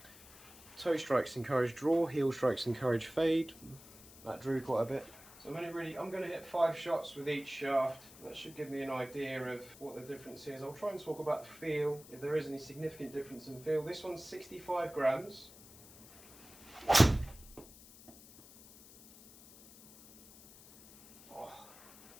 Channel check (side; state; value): left; noise; hiss, 20 dB below the sound